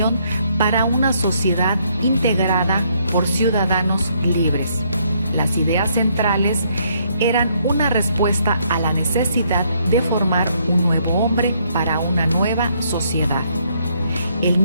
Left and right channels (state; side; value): inverted; both; correlation -0.70